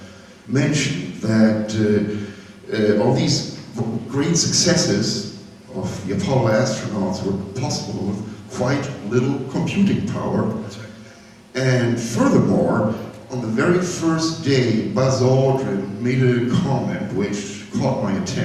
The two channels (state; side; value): identical; both; correlation 1.00